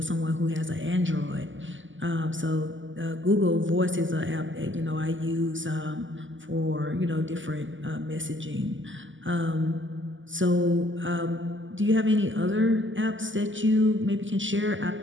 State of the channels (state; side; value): late; left; 0.55 ms